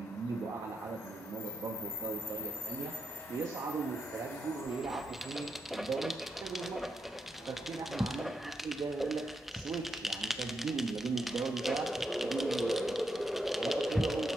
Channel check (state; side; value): normal; both; correlation 0.83